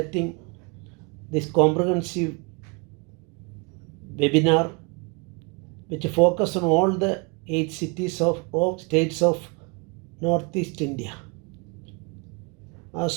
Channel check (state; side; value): quieter; left; 31.5 dB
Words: this comprehensive webinar which focus on all the 8 cities of states of Northeast India.